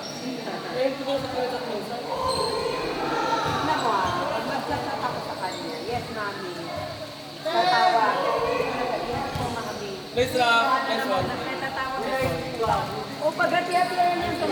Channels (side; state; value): both; identical; correlation 1.00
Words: kita. Eh, hindi ko sa kanya sa minsan. Tignan mo pag nag-chat ako sa kanya, yes, mami. Tatawa. Yes po, mami. Nice rock. Nice one. Tatawa ka. O, pag-hati-hatihan niya sa